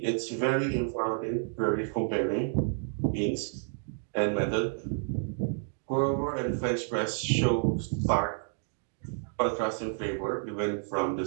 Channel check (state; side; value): silent; left; digital silence